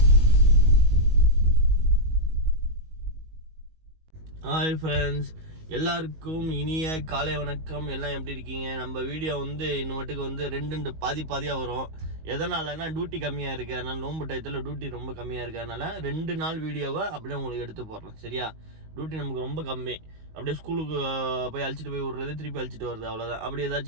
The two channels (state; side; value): late; left; 19 ms